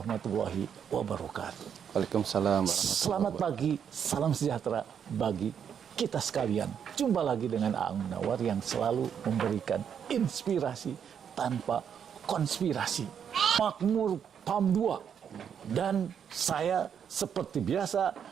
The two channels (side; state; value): left; quieter; 8.0 dB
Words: wabarakatuh. Waalaikumsalam. Selamat pagi, salam sejahtera bagi kita sekalian. Jumpa lagi dengan Aang Munawar yang selalu memberikan inspirasi tanpa konspirasi. Makmur PAM 2. Dan saya seperti biasa